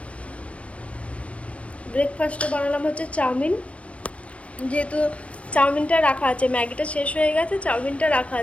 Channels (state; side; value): late; right; 0.063 ms